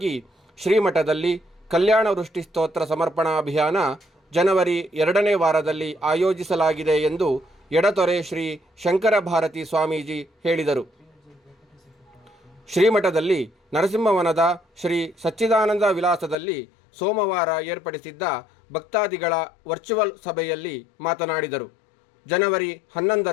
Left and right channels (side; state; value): right; drops out; at 16.4 s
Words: ಶ್ರೀಮಠದಲ್ಲಿ ಕಲ್ಯಾಣ ವೃಷ್ಟಿ ಸ್ತೋತ್ರ ಸಮರ್ಪಣಾ ಅಭಿಯಾನ ಜನವರಿ 2ನೇ ವಾರದಲ್ಲಿ ಆಯೋಜಿಸಲಾಗಿದೆ ಎಂದು ಎಡತೊರೆ ಶ್ರೀ ಶಂಕರ ಭಾರತಿ ಸ್ವಾಮೀಜಿ ಹೇಳಿದರು. ಶ್ರೀಮಠದಲ್ಲಿ ನರಸಿಂಹವನದ ಶ್ರೀ ಸಚ್ಚಿದಾನಂದ ವಿಲಾಸದಲ್ಲಿ ಸೋಮವಾರ ಏರ್ಪಡಿಸಿದ್ದ ಭಕ್ತಾದಿಗಳ ವರ್ಚುವಲ್ ಸಭೆಯಲ್ಲಿ ಮಾತನಾಡಿದರು. ಜನವರಿ